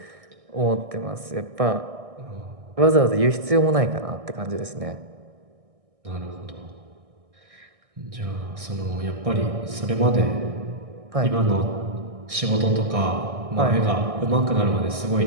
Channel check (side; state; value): left; late; 1.6 ms